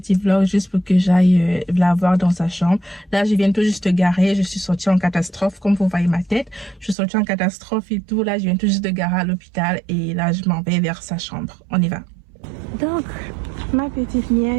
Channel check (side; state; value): left; drops out; at 7.0 s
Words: vlog juste pour que j'aille la voir dans sa chambre. Là je viens tout juste de garer, je suis sortie en catastrophe comme vous voyez ma tête. Je suis sortie en catastrophe et tout. Là je viens tout juste de garer à l'hôpital et là je m'en vais vers sa chambre. On y va. Donc ma petite